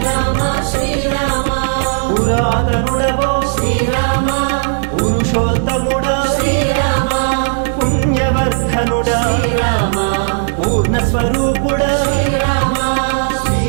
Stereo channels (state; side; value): silent; left; digital silence